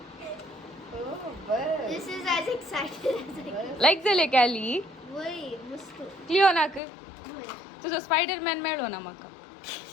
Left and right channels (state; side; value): drops out; right; at 6.8 s